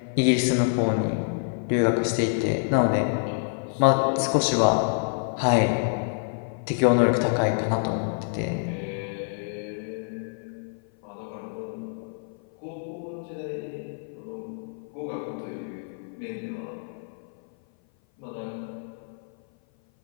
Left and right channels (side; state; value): right; silent; 56 dB below the other